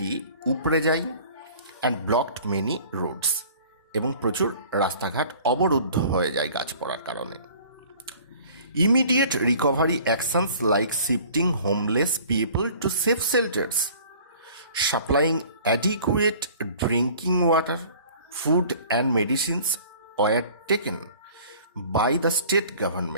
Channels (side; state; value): both; inverted; correlation -0.49